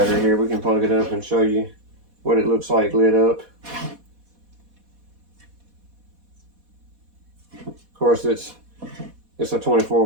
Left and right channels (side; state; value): left; late; 4.1 ms